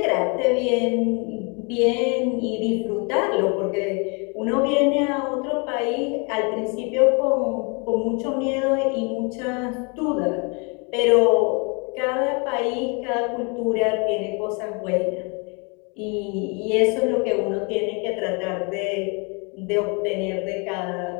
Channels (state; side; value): quieter; right; 33.0 dB